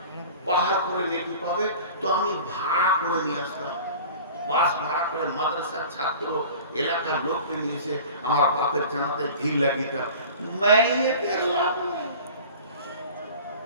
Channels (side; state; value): both; inverted; correlation -0.41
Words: পাহাড় করে নেকি পাবে, তো আমি ভাড়া করে নিয়ে আসতাম, বাস ভাড়া করে, মাদ্রাসার ছাত্র, এলাকার লোককে নিয়ে এসে আমার বাপের জানাতে ভিড় লাগিতাম। মাইয়ের লাভ নেই।